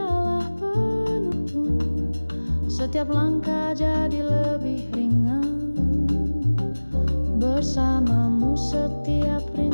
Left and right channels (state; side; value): inverted; both; correlation -1.00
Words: penuntun. Setiap langkah jadi lebih ringan. Bersamamu setiap